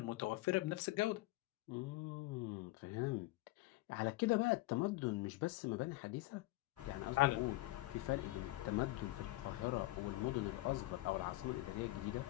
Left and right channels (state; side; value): quieter; right; 19.1 dB